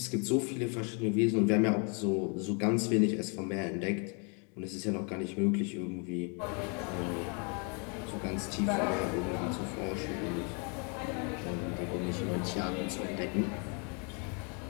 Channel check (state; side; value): quieter; right; 36.6 dB